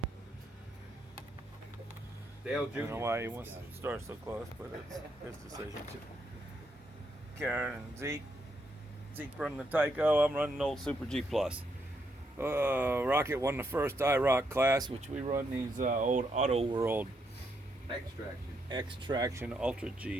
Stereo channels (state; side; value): normal; both; correlation 0.78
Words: Dale I don't know Jr. why he wants to start so close, but it's his decision. Karen and Zeke. Zeke running the Tyco. I'm running the old Super G Plus. Rocket won the first IROC class, which we run these old Auto World Extraction. X-Traction Ultra